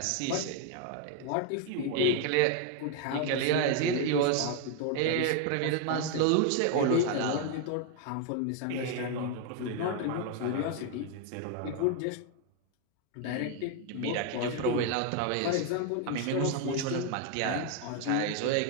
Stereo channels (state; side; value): different; both; correlation 0.01